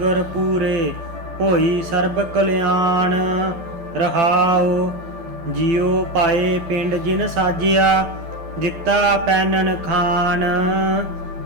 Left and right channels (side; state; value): left; late; 12 ms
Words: ਪੂਰੇ, ਹੋਈ ਸਰਬ ਕਲਿਆਣ। ਰਹਾਉ ਜਿਉ ਪਾਏ ਪਿੰਡ ਜਿਨ ਸਾਜਿਆ, ਦਿੱਤਾ ਪੈਨਨ ਖਾਨ।